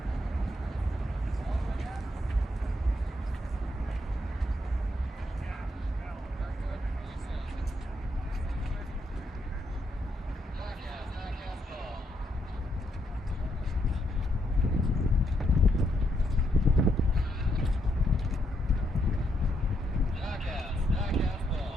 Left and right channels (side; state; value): both; normal; correlation 0.77